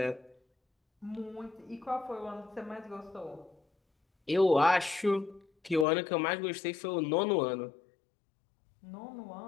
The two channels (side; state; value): right; drops out; at 5.9 s